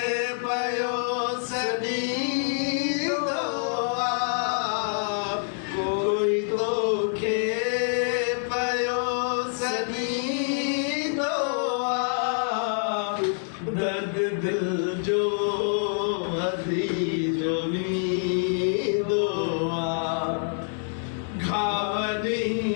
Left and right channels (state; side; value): silent; right; 59 dB below the other